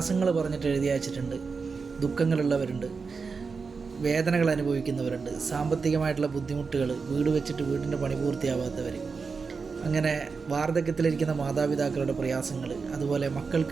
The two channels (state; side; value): quieter; left; 4.9 dB